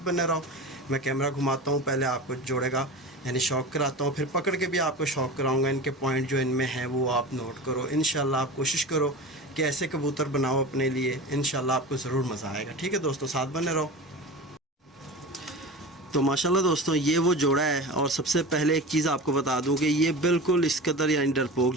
बने रहो, मैं कैमरा घुमाता हूँ, पहले आपको जोड़े का यानी शौक़ कराता हूँ, फिर पकड़ के भी आपको शौक़ कराऊँगा। इनके पॉइंट जो इनमें हैं वो आप नोट करो। इंशाल्लाह आप कोशिश करो कि ऐसे कबूतर बनाओ अपने लिए, इंशाल्लाह आपको ज़रूर मज़ा आएगा। ठीक है दोस्तों, साथ बने रहो। तो माशाल्लाह दोस्तों, ये वो जोड़ा है, और सबसे पहले एक चीज़ आपको बता दूं कि ये बिल्कुल इस कदर यानी डरपोक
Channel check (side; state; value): both; normal; correlation 0.31